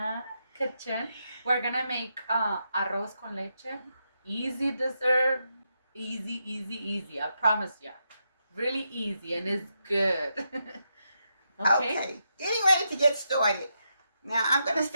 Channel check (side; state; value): both; inverted; correlation -0.83